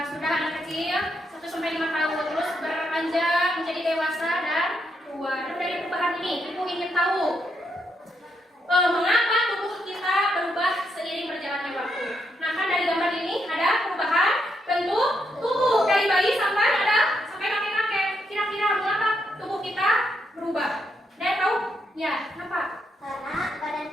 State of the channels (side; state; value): both; normal; correlation 0.79